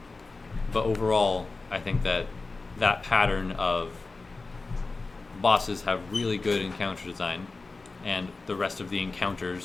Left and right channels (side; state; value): right; quieter; 3.7 dB